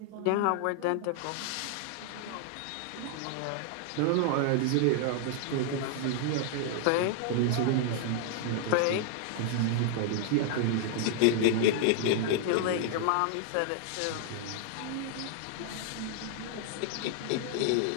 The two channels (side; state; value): both; different; correlation 0.00